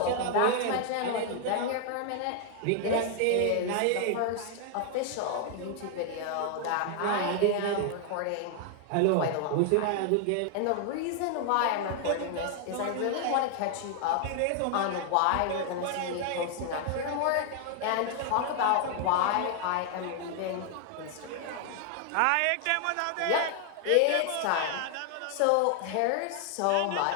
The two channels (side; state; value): both; different; correlation 0.00